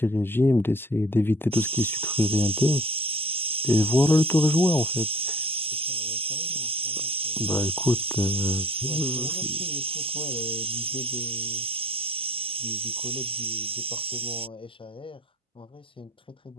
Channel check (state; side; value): normal; both; correlation 0.50